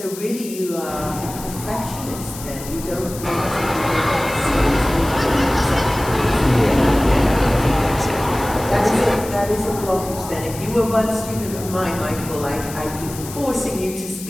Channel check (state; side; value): noise; left; hiss, 13 dB below the sound